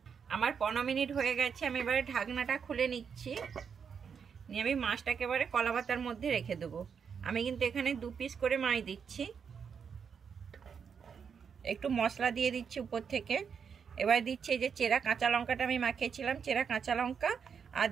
আমার 15 মিনিট হয়ে গেছে। আমি এবারে ঢাকনাটা খুলে নিচ্ছি, নিয়ে আমি মাছটাকে এবারে কলা পাতার মধ্যে রেখে দেবো। আমি কিন্তু এখানে 2 পিস করে মাছ দিচ্ছি। একটু মশলা দিয়ে দিচ্ছি উপর থেকে। এবার দিচ্ছি এই যে চেরা কাঁচা লঙ্কাটা আমি মাখিয়েছিলাম, চেরা কাঁচা লঙ্কা, আর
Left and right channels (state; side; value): quieter; left; 6.7 dB